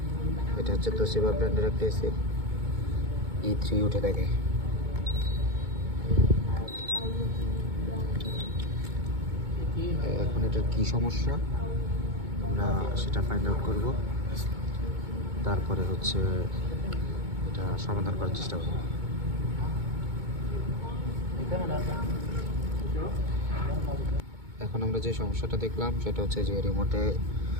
এটা হচ্ছে তোশিবা ব্র্যান্ডের একটা এসি, E3 উঠে থাকে। এখন এটার কী সমস্যা আমরা সেটা ফাইন্ড আউট করব, তারপরে হচ্ছে এটা সমাধান করার চেষ্টা করব। এখন আমরা যে সমস্যাটা দেখলাম সেটা হচ্ছে যে রিমোটে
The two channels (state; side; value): late; left; 2.2 ms